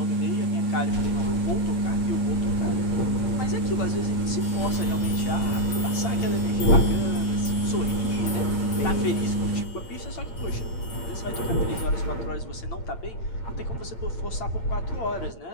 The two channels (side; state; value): right; late; 8.8 ms